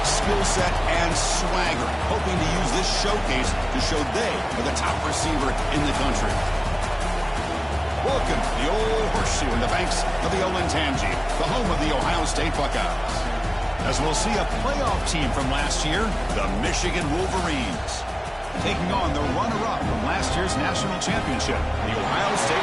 skill set and swagger, hoping to use this showcase to show they are the top receiver in the country. Welcome to the old horseshoe in the banks of the old Ncaa, the home of the Ohio State Buckeyes. As we'll see a playoff team from last year, the Michigan Wolverines, taking on the runner-up from last year's national championship, the Ohio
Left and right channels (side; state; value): both; identical; correlation 1.00